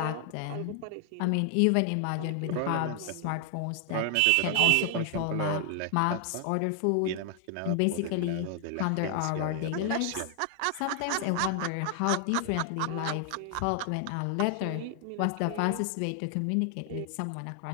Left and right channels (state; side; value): different; both; correlation 0.00